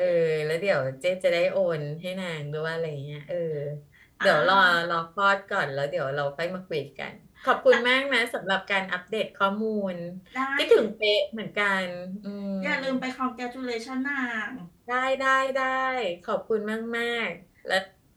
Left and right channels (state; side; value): identical; both; correlation 1.00